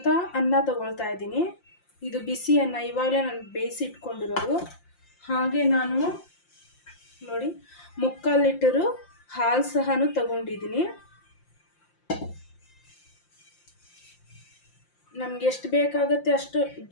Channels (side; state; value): right; late; 5.7 ms